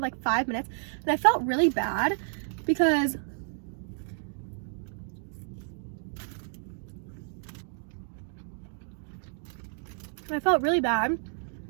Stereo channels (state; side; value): silent; left; 57 dB below the other